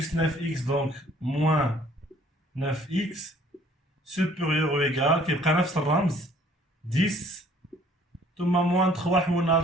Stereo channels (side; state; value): both; normal; correlation 0.57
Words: 9x, donc moins 9x supérieur ou égal كيبقى نفس الرمز 10 ثم moins 3 حولنا